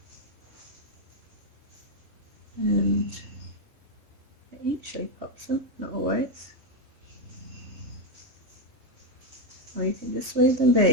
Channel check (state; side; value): late; left; 3.7 ms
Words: And it usually pops them, not always. Or you can just leave them